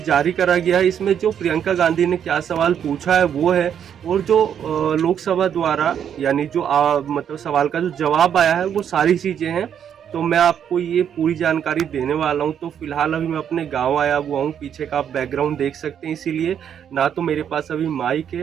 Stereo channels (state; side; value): quieter; left; 8.7 dB